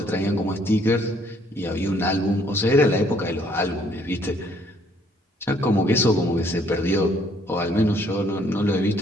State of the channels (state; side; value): normal; both; correlation 0.64